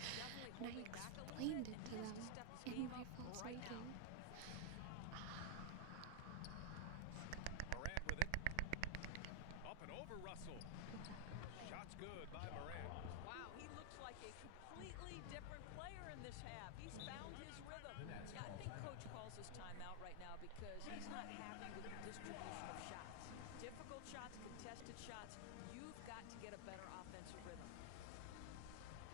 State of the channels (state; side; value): different; both; correlation 0.00